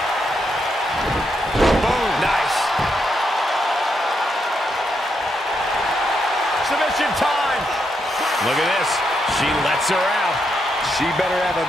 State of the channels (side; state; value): both; normal; correlation 0.81